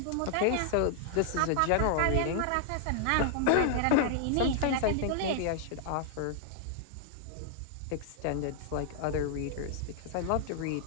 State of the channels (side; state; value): both; different; correlation -0.01